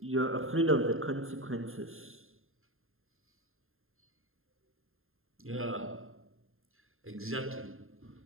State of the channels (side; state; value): left; late; 0.61 ms